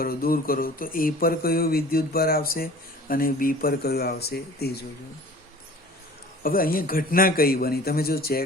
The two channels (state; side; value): normal; both; correlation 0.45